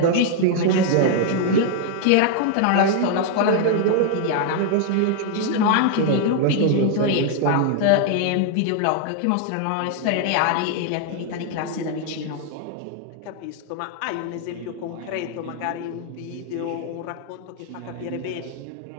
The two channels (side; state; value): both; different; correlation 0.00